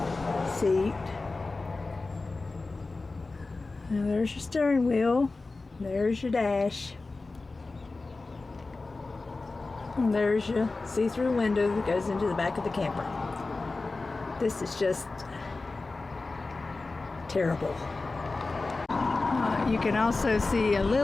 seat. Now there's your steering wheel. There's your dash. And there's your see-through window that goes into the back of the camper. This is just terrible. You can also see a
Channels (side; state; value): right; quieter; 3.6 dB